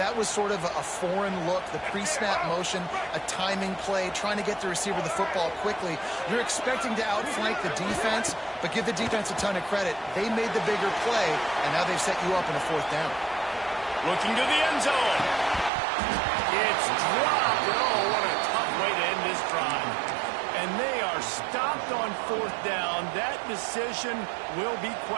was sort of a foreign look, the pre-snap motion, a timing play, trying to get the receiver the football quickly. You're expecting to outflank the defense, but give the defense a ton of credit. They made the bigger play, and now they've set you up in a 4th down. Looking to the end zone. It's dropped. Oh, what a tough way to end this drive. And they are stopped on 4th down. That decision will be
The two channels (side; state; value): left; drops out; at 15.7 s